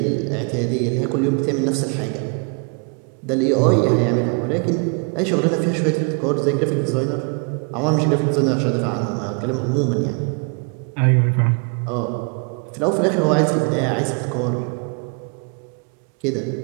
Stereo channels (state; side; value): quieter; left; 36.5 dB